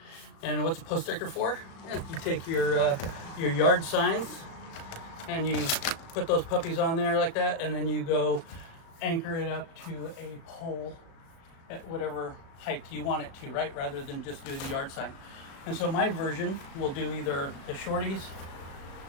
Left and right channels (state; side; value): late; right; 36 ms